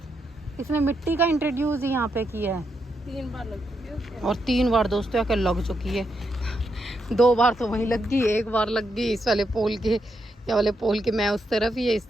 इसने मिट्टी का इंट्रोड्यूस यहाँ पे किया है। 3 बार लग चुकी है, और 3 बार दोस्तों आकर लग चुकी है। 2 बार तो वहीं लग गई, 1 बार लग गई इस वाले पोल के, या वाले पोल के, मैं उस तरफ ही है इस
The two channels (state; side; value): normal; both; correlation 0.82